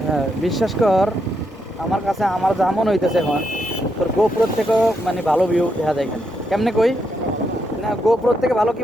বিশ্বাস কর, আমার কাছে আমার যা মনে হইতেছে এখন তোর গোপ্রোর থেকেও মানে ভালো ভিউ দেখা যায় এখানে। কেমনে কই না, গোপ্রোর থেকে ভালো কি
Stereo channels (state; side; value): normal; both; correlation 0.80